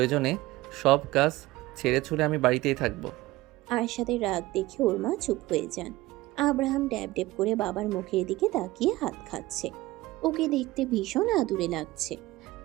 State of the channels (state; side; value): quieter; left; 18.6 dB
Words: সব কাজ ছেড়ে ছুড়ে আমি বাড়িতেই থাকবো। আরশাদের রাগ দেখে ওর মা চুপ হয়ে যান। আব্রাহাম ড্যাব ড্যাব করে বাবার মুখের দিকে তাকিয়ে হাত খাচ্ছে। ওকে দেখতে ভীষণ আদুরে লাগছে।